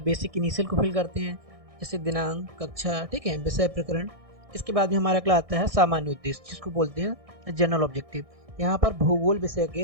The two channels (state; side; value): late; left; 1.6 ms